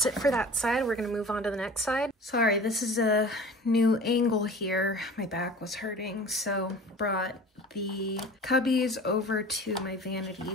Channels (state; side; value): normal; both; correlation 0.40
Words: it for that side. We're gonna move on to the next side. So Sorry, this is a new angle here. My back was hurting, so brought the cubbies over to my